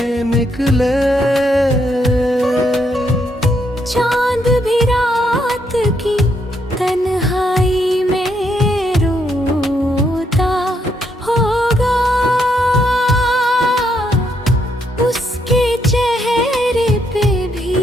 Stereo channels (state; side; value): normal; both; correlation 0.75